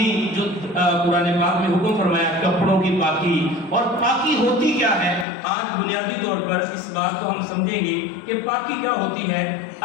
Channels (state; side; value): drops out; right; at 5.2 s